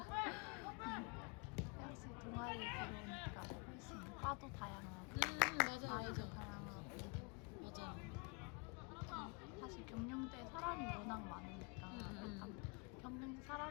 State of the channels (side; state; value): right; quieter; 32.0 dB